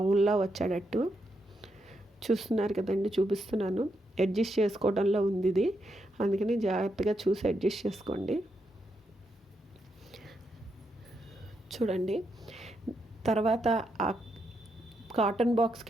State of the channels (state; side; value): normal; both; correlation 0.81